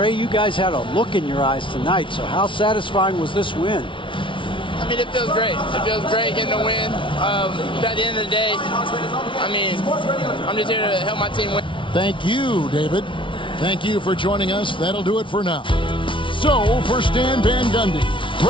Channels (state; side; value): late; right; 0.25 ms